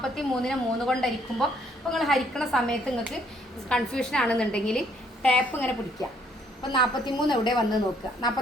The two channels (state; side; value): normal; both; correlation 0.67